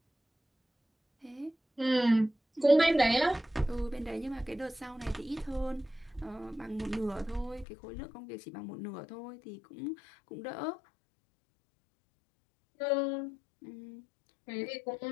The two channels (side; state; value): right; drops out; at 7.7 s